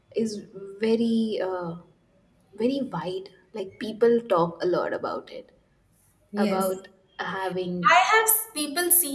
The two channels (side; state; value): both; identical; correlation 1.00